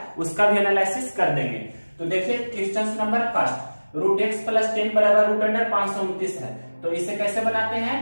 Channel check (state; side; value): inverted; both; correlation -1.00